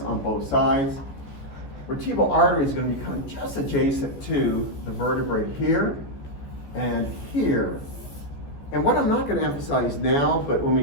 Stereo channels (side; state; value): right; late; 14 ms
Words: on both sides. Vertebral artery is going to be kind of just adjacent to the vertebrae here and here. And what I'm not going to emphasize now, but when we